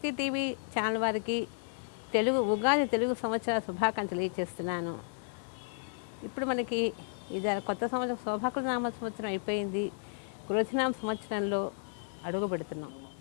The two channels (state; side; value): silent; right; 56 dB below the other